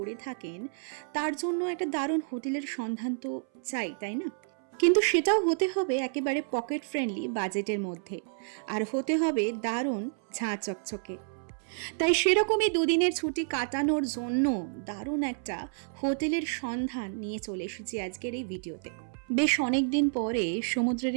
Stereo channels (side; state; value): left; silent; 58 dB below the other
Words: থাকেন, তার জন্য একটা দারুণ হোটেলের সন্ধান তো চাই, তাই না? কিন্তু সেটাও হতে হবে একেবারে পকেট ফ্রেন্ডলি বাজেটের মধ্যে, আর হতে হবে দারুণ ঝাঁ চকচকে। তাই সেরকমই দুদিনের ছুটি কাটানোর জন্য দারুণ একটা হোটেলের সন্ধান নিয়ে চলে এসেছি আজকের এই ভিডিওতে। বেশ অনেক দিন পরে সমুদ্রের